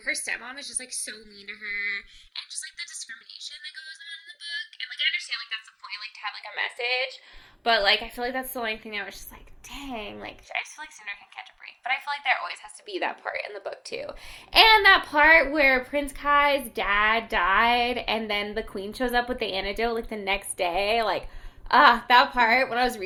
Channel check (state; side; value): identical; both; correlation 1.00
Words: her stepmom is just, like, so mean to her, and just, like, the discrimination that goes on in the book. And, like, I understand, like, that's the point, like, to have, like, a message, but, like, I feel like that's the only thing that was just, like, dang, like, I just feel like Cinder can catch a break. But I feel like there always has to be that part in the book, too. And that part where Prince Kai's dad died, and then the queen shows up with the antidote, like, the next day. Like, that part, when I was